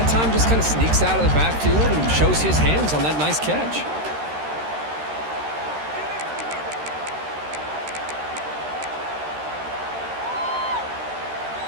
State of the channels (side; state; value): left; late; 13 ms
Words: time just kind of sneaks out of the backfield and shows his hands on that nice catch.